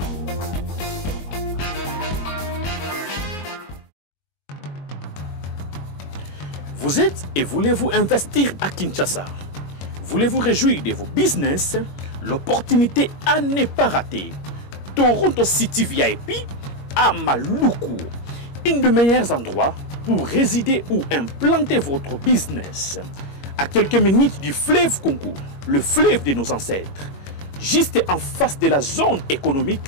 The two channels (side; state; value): right; late; 21 ms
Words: Vous êtes et voulez-vous investir à Kinshasa? Voulez-vous réjouir de vos business? L'opportunité à ne pas rater. Toronto City VIP à Maluku. Un des meilleurs endroits pour résider ou implanter votre business. À quelques minutes du fleuve Congo, le fleuve de nos ancêtres. Juste en face de la zone